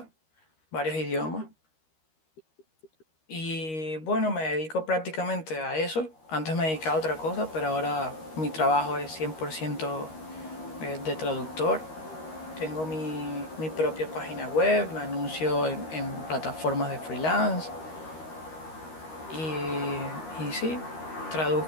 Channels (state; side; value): late; right; 13 ms